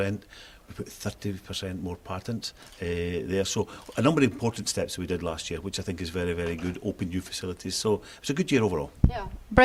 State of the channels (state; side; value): identical; both; correlation 1.00